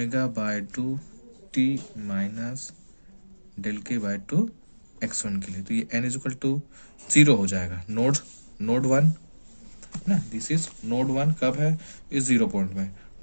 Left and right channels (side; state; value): both; inverted; correlation -1.00